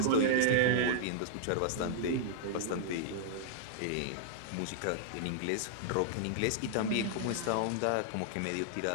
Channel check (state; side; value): different; both; correlation -0.01